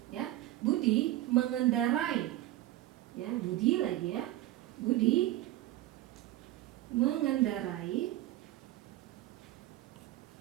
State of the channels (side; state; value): left; quieter; 15.3 dB